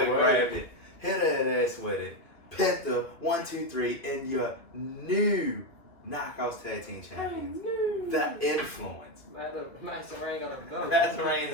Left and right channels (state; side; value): late; right; 2.3 ms